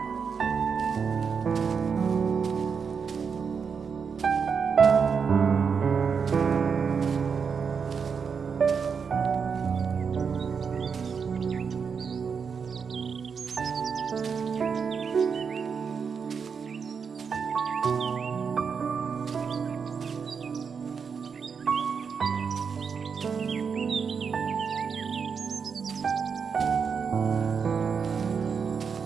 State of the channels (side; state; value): left; quieter; 6.1 dB